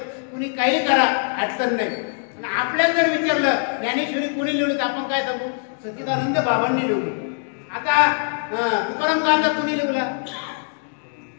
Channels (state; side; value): silent; right; 64 dB below the other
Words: कुणी काही करा अडचण नाही आणि आपल्याला जर विचारलं ज्ञानेश्वरी कोणी लिहिली तर आपण काय सांगू सच्चिदानंद बाबांनी लिहिली आता तुकाराम गांधा कोणी लिहिला